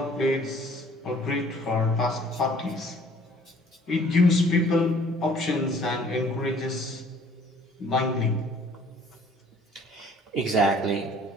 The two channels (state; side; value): normal; both; correlation 0.56